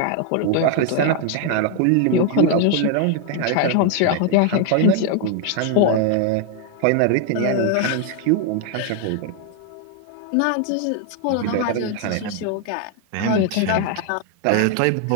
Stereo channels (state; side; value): different; both; correlation 0.00